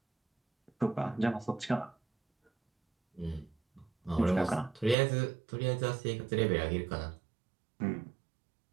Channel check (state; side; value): drops out; left; at 5.0 s